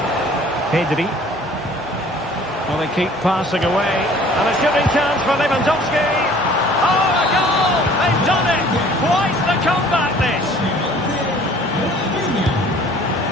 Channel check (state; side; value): noise; right; hum, 24 dB below the sound